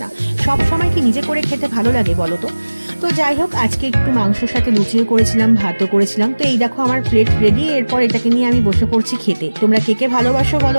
না। সব সময় কি নিজে করে খেতে ভালো লাগে বলো তো? তো যাই হোক, আজকে একটু মাংসের সাথে লুচিও করেছিলাম, ভাতও করেছিলাম। তো এই দেখো আমার প্লেট রেডি। এরপর এটাকে নিয়ে আমি বসে পড়ছি খেতে। তোমরা কে কে ভালোবাসো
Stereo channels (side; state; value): both; inverted; correlation -1.00